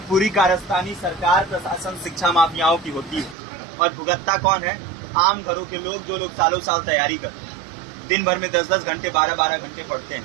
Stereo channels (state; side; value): drops out; left; at 3.4 s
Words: पूरी कारस्तानी सरकार, प्रशासन, शिक्षा माफियाओं की होती है। और भुगतता कौन है? आम घरों के लोग, जो लोग सालों साल तैयारी करते हैं, दिन भर में 10-10 घंटे, 12-12 घंटे पढ़ते